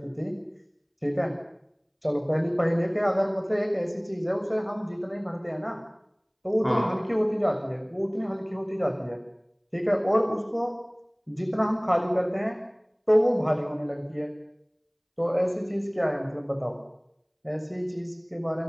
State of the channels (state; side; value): identical; both; correlation 1.00